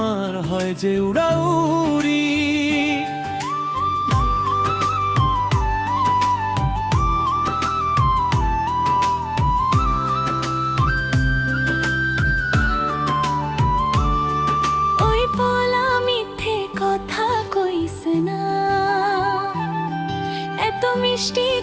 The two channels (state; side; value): identical; both; correlation 1.00